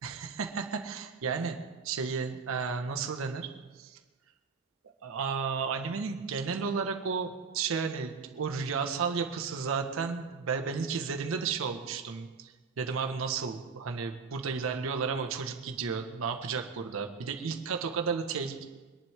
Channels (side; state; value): left; quieter; 5.2 dB